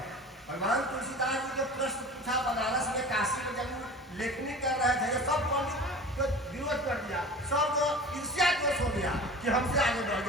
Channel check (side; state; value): both; normal; correlation 0.37